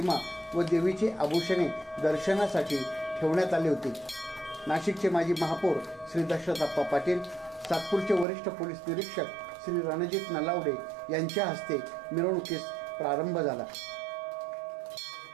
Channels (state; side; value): drops out; left; at 8.2 s